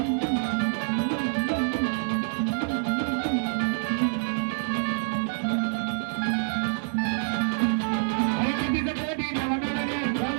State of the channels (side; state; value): left; silent; digital silence